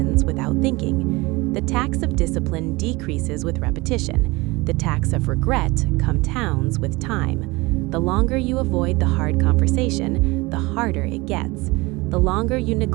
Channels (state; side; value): quieter; left; 23.0 dB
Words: without thinking. The tax of discipline decreases with repetition. The tax of regret compounds with time. The longer you avoid the hard conversation, the harder it gets. The longer you